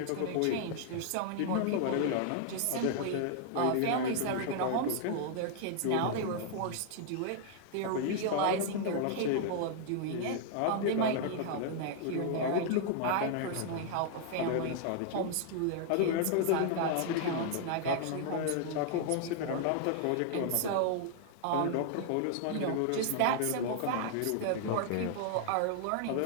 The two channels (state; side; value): different; both; correlation 0.00